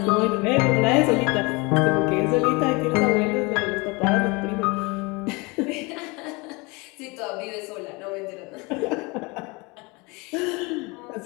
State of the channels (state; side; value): quieter; right; 26.8 dB